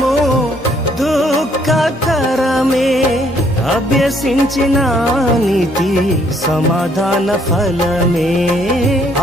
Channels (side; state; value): both; normal; correlation 0.66